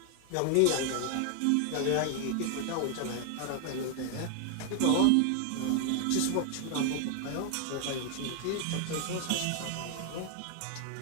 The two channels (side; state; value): both; different; correlation 0.00